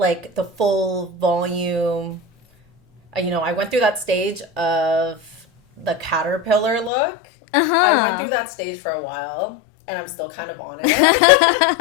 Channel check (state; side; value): drops out; right; at 6.9 s